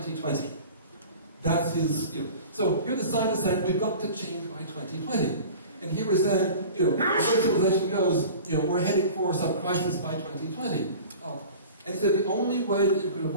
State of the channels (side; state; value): both; inverted; correlation -0.40